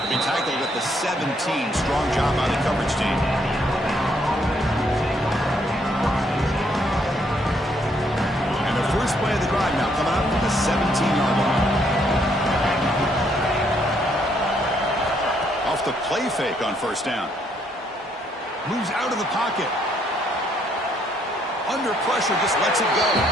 He tackled at the 17. Strong job by the coverage team. And the first play of the drive now coming up from the 17-yard line. Off the play fake on first down. Moves out of the pocket. Under pressure, just lets it go.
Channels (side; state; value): both; normal; correlation 0.71